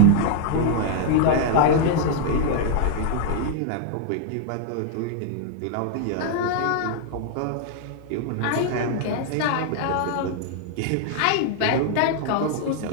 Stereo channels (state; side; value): different; both; correlation 0.00